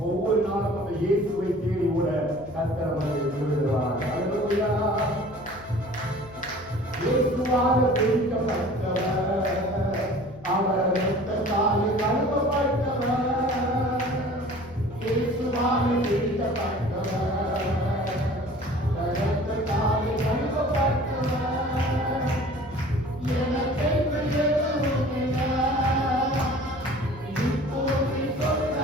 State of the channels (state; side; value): noise; left; hum, 19 dB below the sound